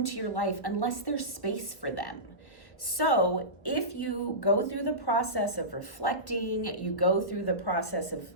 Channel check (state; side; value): late; right; 1.4 ms